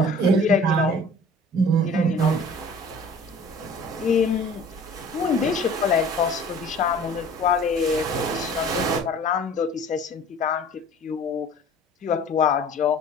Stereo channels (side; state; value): both; normal; correlation 0.47